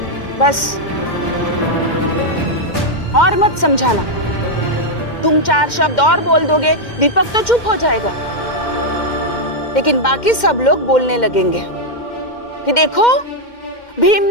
बस और मत समझाना। तुम 4 शब्द और बोल दोगे, दीपक तो चुप हो जाएगा, लेकिन बाकी सब लोग बोलने लगेंगे कि देखो भीम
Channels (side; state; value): right; late; 2.1 ms